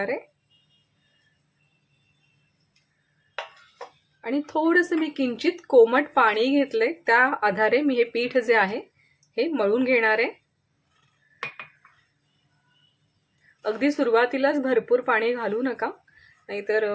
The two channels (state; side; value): identical; both; correlation 1.00